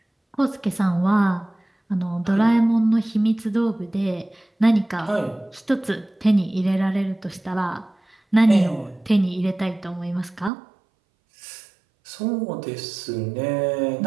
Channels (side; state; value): left; drops out; at 10.5 s